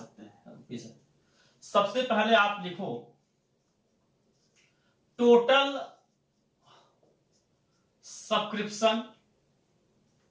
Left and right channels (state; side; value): identical; both; correlation 1.00